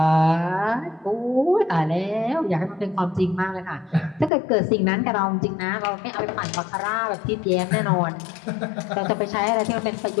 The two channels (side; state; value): right; drops out; at 4.3 s